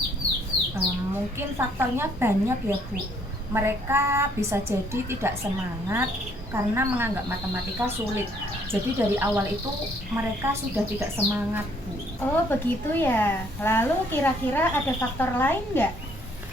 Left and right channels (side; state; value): both; normal; correlation 0.65